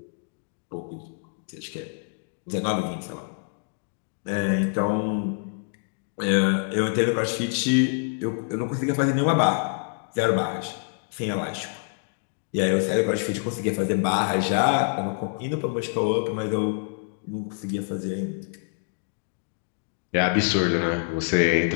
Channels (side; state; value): right; silent; 61 dB below the other